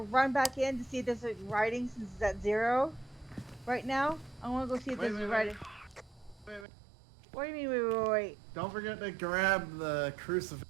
run back in to see if there's like writing since it's at 0 right now. I want to go see if there's writing. Wait. What do you mean? Wait. Don't forget to grab the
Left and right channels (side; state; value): left; drops out; at 6.7 s